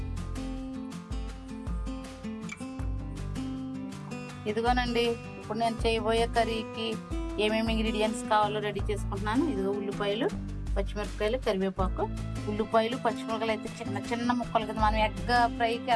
ఇదిగోనండి ఇప్పుడు నేను చేయబోయే కర్రీకి ఏమేమి ఇంగ్రీడియంట్స్ కావాలో రెడీ చేసుకుంటున్నాను. ఇదిగో ఉల్లిపాయలు, పచ్చిమిరపకాయలు, కరివేపాకు. ఉల్లిపాయలు పచ్చిమిరపకాయలు అయితే చిన్న చిన్న ముక్కలు కదా, మనం ఎగ్ ఫ్రైకి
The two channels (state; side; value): identical; both; correlation 1.00